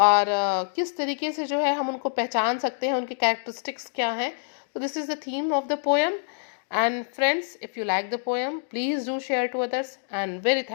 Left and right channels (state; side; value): silent; right; digital silence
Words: किस तरीके से जो है हम उनको पहचान सकते हैं, उनके कैरेक्टरिस्टिक्स क्या हैं. So this is the theme of the poem. And friends, if you like the poem, please do share to others, and very